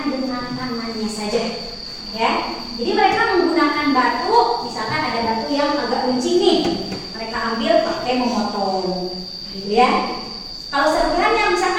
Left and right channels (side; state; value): both; identical; correlation 1.00